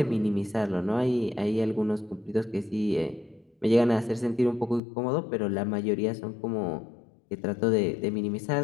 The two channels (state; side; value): drops out; right; at 4.8 s